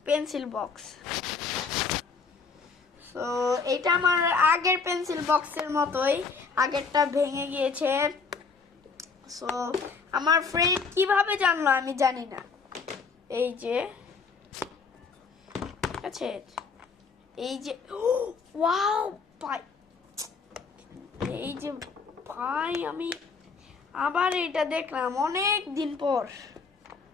পেন্সিল বক্স। তো এটা আমার আগের পেন্সিল বক্সের মতোই, আগেরটা ভেঙে গিয়েছে। সো আমার ফ্রেন্ড কিভাবে জানলো আমি জানি না। এই যে আছে, এই যে ওয়াও ভাই, এই যে ভাই আমি আবার এটা দেখলাম অনেক দিন পর।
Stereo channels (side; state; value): right; quieter; 5.0 dB